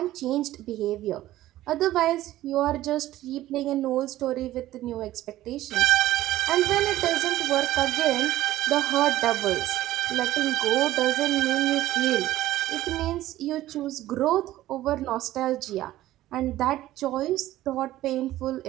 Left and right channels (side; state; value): left; quieter; 15.0 dB